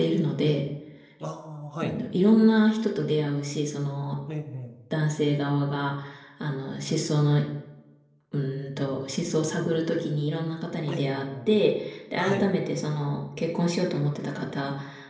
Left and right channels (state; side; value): identical; both; correlation 1.00